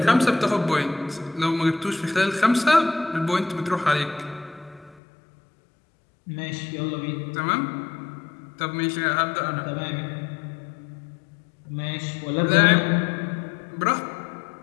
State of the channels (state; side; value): drops out; right; at 5.0 s